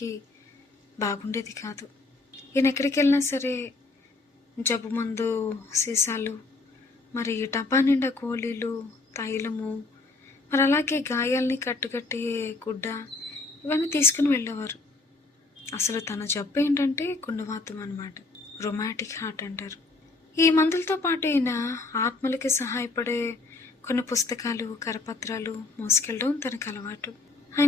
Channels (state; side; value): quieter; right; 3.5 dB